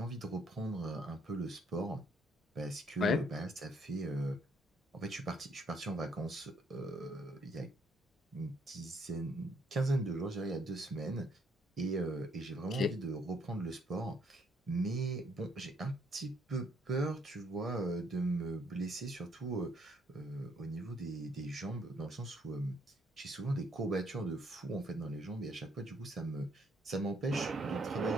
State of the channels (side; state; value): both; normal; correlation 0.68